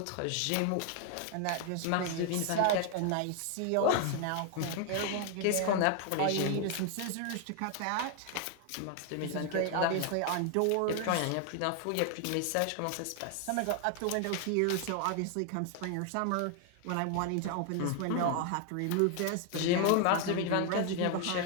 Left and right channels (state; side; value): different; both; correlation 0.00